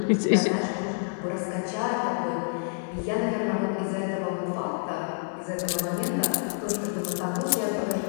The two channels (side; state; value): right; silent; digital silence